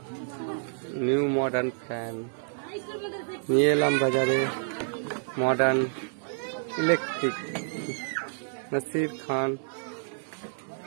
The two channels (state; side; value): silent; left; digital silence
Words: new modern fan নিয়ে এলাম বাজারে। মডার্ন ইলেকট্রিক, নাসির খান,